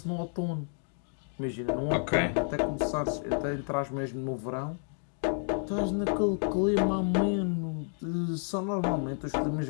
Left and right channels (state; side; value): silent; right; 55 dB below the other